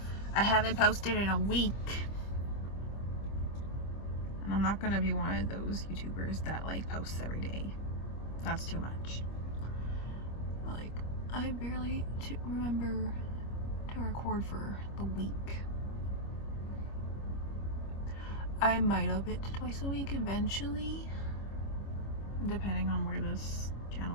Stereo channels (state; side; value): late; right; 25 ms